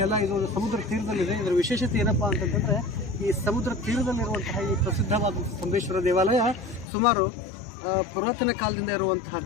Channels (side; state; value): right; drops out; at 6.9 s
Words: ಇದು ಸಮುದ್ರ ತೀರದಲ್ಲಿದೆ. ಇದರ ವಿಶೇಷತೆ ಏನಪ್ಪ ಅಂತಂತಂದರೆ, ಈ ಸಮುದ್ರ ತೀರದಲ್ಲಿರುವಂತಹ ಈ ಪ್ರಸಿದ್ಧವಾದ ಸ್ತಂಭೇಶ್ವರ ದೇವಾಲಯ ಸುಮಾರು ಪುರಾತನ ಕಾಲದಿಂದ